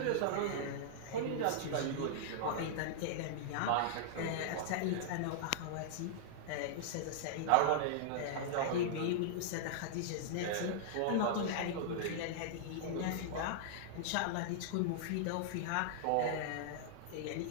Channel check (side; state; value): both; different; correlation -0.01